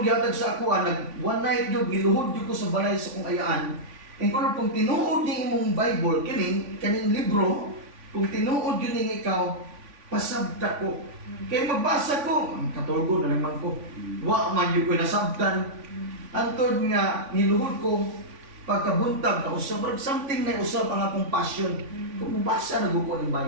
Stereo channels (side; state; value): left; late; 3.5 ms